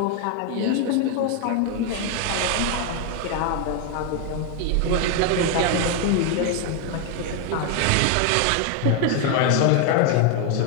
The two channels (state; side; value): different; both; correlation 0.01